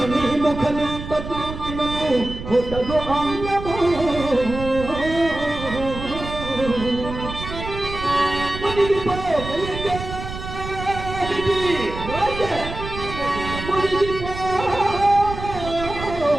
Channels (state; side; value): noise; right; rumble, 9 dB below the sound